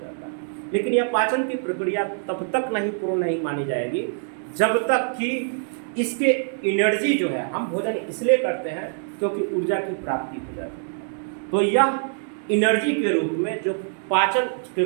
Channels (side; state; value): left; silent; digital silence